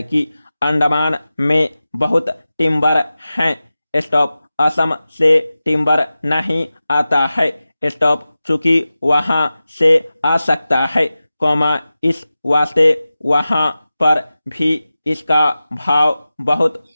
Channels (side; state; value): both; inverted; correlation -0.95